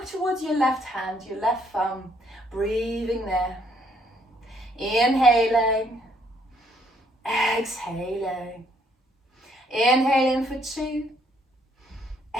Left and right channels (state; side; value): normal; both; correlation 0.68